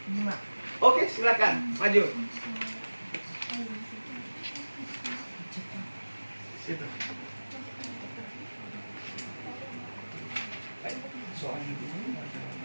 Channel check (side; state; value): both; inverted; correlation -1.00